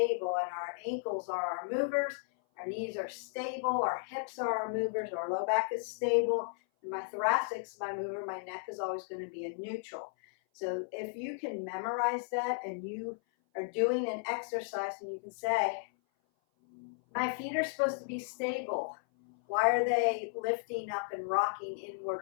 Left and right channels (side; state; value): right; silent; 55 dB below the other